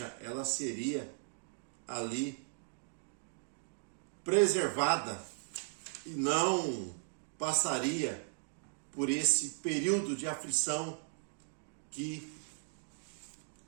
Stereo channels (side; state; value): left; silent; digital silence